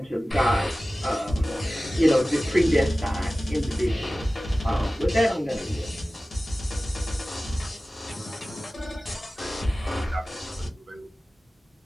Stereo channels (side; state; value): both; normal; correlation 0.96